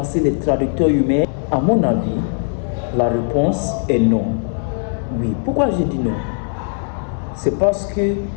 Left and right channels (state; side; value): silent; right; 66 dB below the other